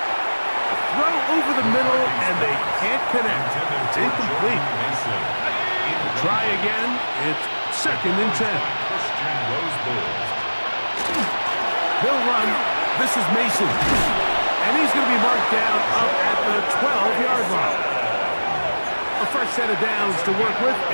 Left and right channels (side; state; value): both; inverted; correlation -1.00